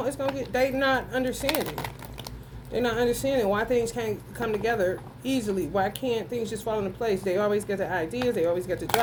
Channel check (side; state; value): both; identical; correlation 1.00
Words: get. They not understanding. They're not understanding why things can't come together easily. Why can't things just fall into place? They always get the ideas. They always get the